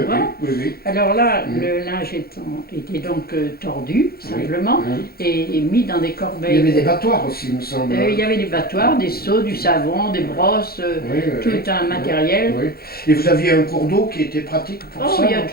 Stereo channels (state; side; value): late; right; 0.44 ms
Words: bois. Alors là, le linge était donc tordu, simplement, et mis dans des corbeilles. Il y avait des battoirs aussi, il me semble. Il y avait des battoirs, des seaux, du savon, des brosses, tout un matériel. Et vous aviez un cours d'eau qui était pratique pour ça? Il y a